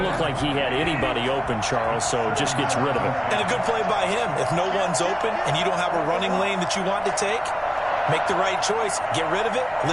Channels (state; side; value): identical; both; correlation 1.00